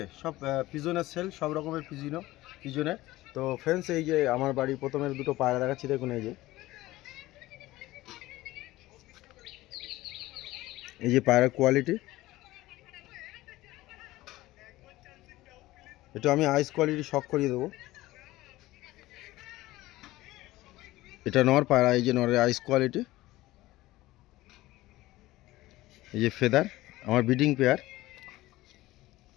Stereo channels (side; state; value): right; quieter; 17.6 dB